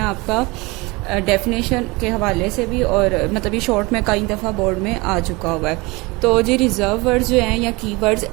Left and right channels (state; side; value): quieter; left; 24.5 dB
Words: आपका डेफिनेशन के हवाले से भी, और मतलब ये शॉर्ट में कई दफ़ा बोर्ड में आ चुका हुआ है। तो जी रिजर्व वर्ड्स जो हैं या कीवर्ड्स